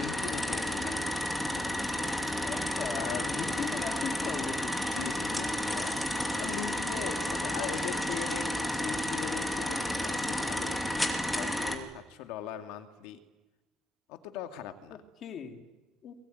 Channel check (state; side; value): normal; both; correlation 0.83